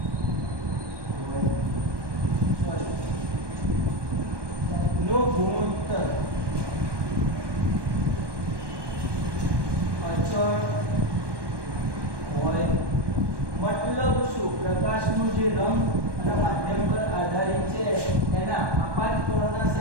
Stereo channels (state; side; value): late; left; 1.2 ms